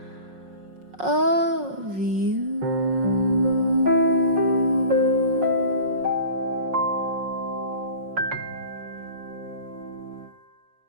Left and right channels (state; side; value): late; left; 5.5 ms